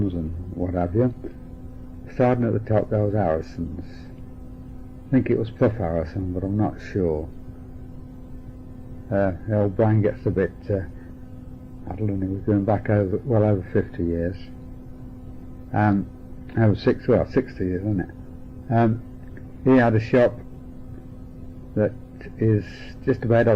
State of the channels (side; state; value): both; identical; correlation 1.00